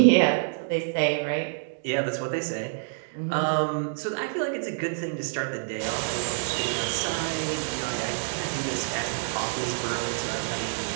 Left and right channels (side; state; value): left; silent; digital silence